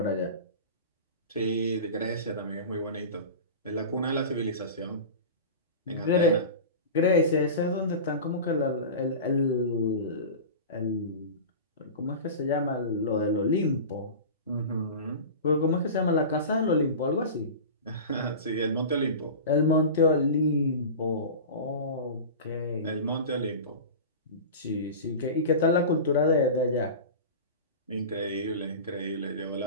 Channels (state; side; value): inverted; both; correlation -0.31